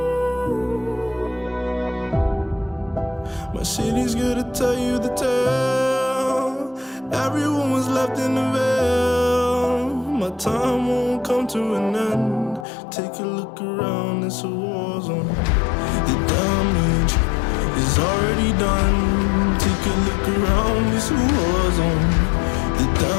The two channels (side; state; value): right; drops out; at 12.7 s